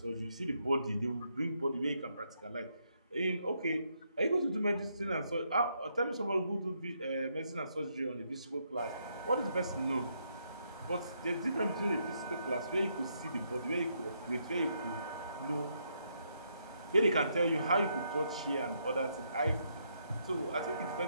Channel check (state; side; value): inverted; both; correlation -0.76